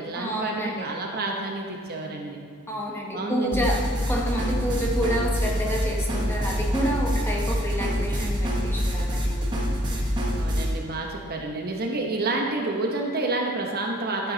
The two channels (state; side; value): normal; both; correlation 0.62